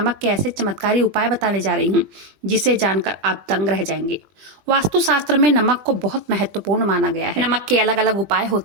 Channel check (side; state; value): left; late; 20 ms